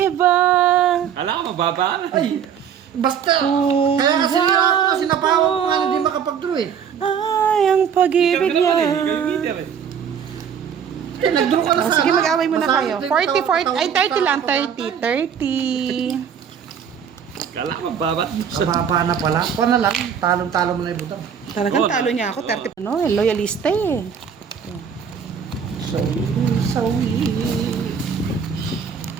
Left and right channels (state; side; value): quieter; left; 7.6 dB